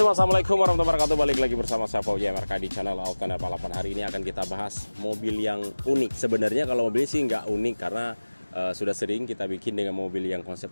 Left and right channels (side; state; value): both; inverted; correlation -1.00